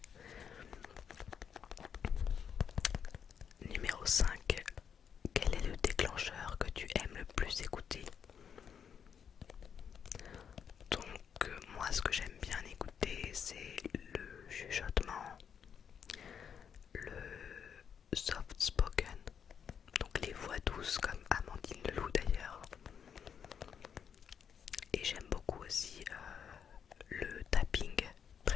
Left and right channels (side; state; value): right; quieter; 7.6 dB